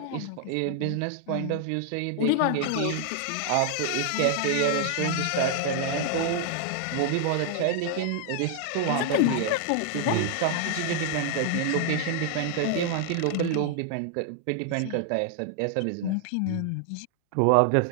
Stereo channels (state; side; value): different; both; correlation 0.00